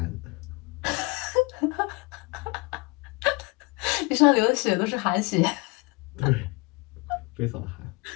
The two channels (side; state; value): right; quieter; 27.6 dB